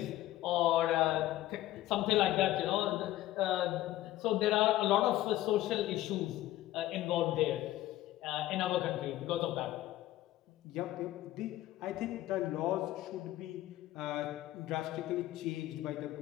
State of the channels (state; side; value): quieter; right; 15.1 dB